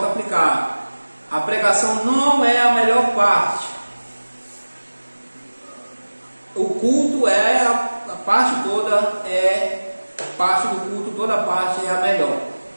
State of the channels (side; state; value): both; inverted; correlation -1.00